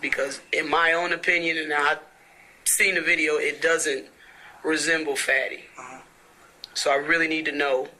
Because in my own opinion, and I've seen the video, it doesn't resemble Fatty. So I really need to know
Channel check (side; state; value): both; identical; correlation 1.00